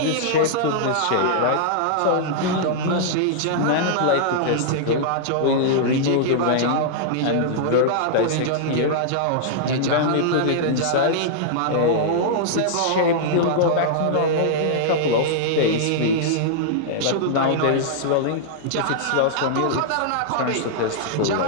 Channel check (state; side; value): different; both; correlation -0.01